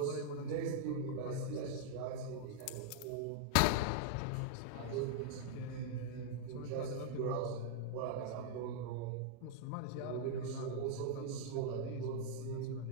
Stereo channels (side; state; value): both; different; correlation -0.01